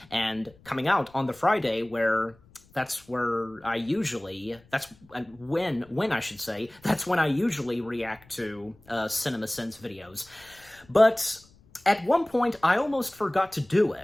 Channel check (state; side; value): noise; left; rumble, 28 dB below the sound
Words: and coming out on the Friday where that's when I usually react to CinemaSins videos. But at one point, I almost forgot to do